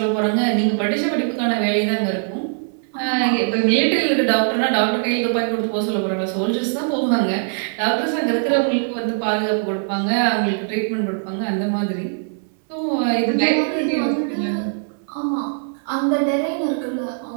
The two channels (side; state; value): left; silent; 65 dB below the other